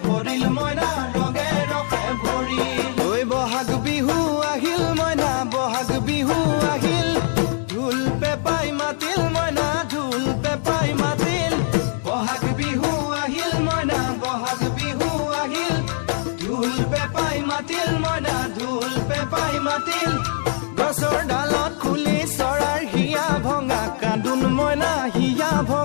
ভৰিল মইনা ৰঙে ৰখে ভৰিল ঐ বহাগ বিহু আহিল মইনা বহাগ বিহু আহিল ঢোল পেপাই মাতিল মইনা ঢোল পেপাই মাতিল বহাগ বিহু আহিল মইনা বহাগ বিহু আহিল ঢোল পেপাই মাতিল মইনা ঢোল পেপাই মাতিল গছৰ ডালত খুলি চৰাৰ হিয়া ভঙা কান্দোন মইনা হিয়া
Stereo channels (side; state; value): right; silent; 64 dB below the other